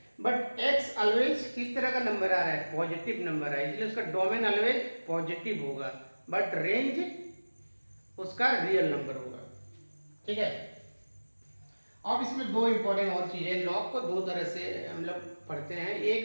बट x ऑलवेज किस तरह का नंबर आ रहा है, पॉजिटिव नंबर है, इसलिए उसका डोमेन ऑलवेज पॉजिटिव होगा, बट रेंज उसका रियल नंबर होगा। ठीक है, अब इसमें दो इंपॉर्टेंट और चीजें, लॉग को दो तरह से हम लोग पढ़ते हैं, एक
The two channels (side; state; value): both; inverted; correlation -1.00